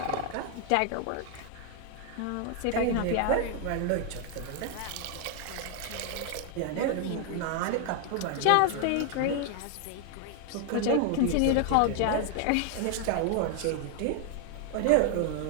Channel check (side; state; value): both; different; correlation 0.00